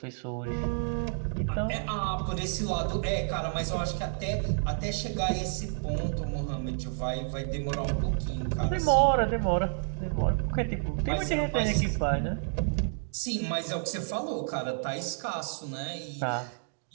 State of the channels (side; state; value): left; silent; digital silence